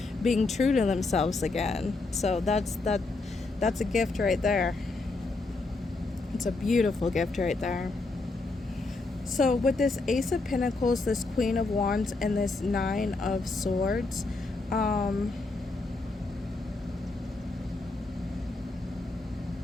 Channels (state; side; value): quieter; right; 3.4 dB